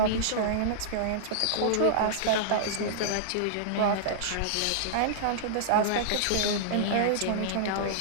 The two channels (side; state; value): both; different; correlation -0.02